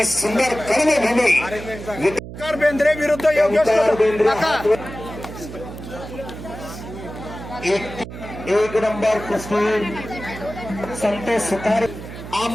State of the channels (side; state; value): right; noise; hum, 12 dB below the sound